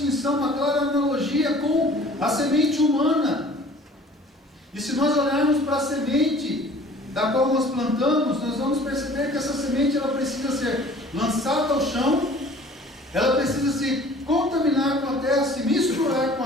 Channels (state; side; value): normal; both; correlation 0.50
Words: uma clara analogia com a semente humana. E se nós olharmos para a semente da qual nós plantamos, nós vamos perceber que essa semente ela precisa ser lançada ao chão, ela precisa se contaminar com a terra, se misturar com